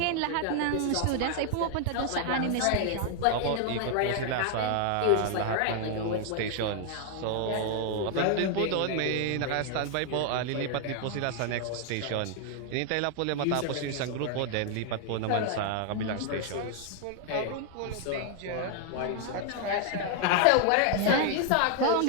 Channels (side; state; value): both; different; correlation 0.00